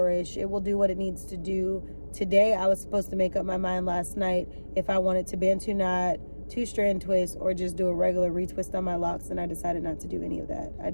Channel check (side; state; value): both; inverted; correlation -1.00